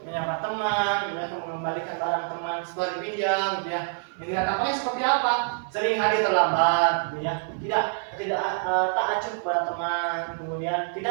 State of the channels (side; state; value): left; silent; digital silence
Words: menyapa teman, ya, mengembalikan barang teman sesuai dipinjam, gitu ya. Yang tidak tampaknya seperti apa? Sering hadir terlambat, gitu ya. Tidak tak acuh kepada teman, kemudian